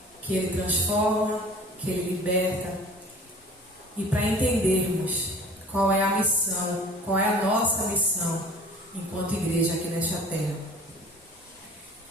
que Ele transforma, que Ele liberta. E para entendermos qual é a missão, qual é a nossa missão enquanto igreja aqui nesta terra.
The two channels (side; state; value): both; normal; correlation 0.45